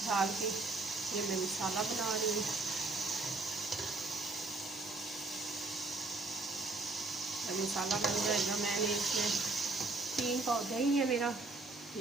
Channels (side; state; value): left; quieter; 3.4 dB